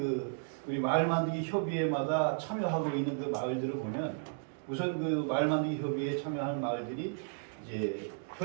우리 마을 만들기 협의회마다 참여하고 있는 그 마을들을 보면 우선 그 마을 만들기 협의회에 참여한 마을들이 이제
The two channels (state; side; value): silent; left; digital silence